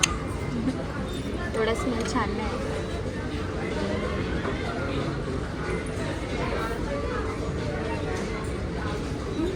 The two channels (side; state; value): both; identical; correlation 1.00